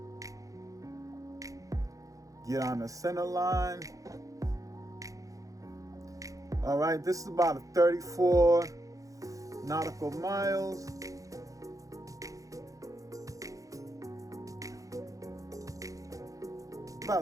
Get on the center line. All right, this is about 34 nautical miles.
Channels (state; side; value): late; left; 0.16 ms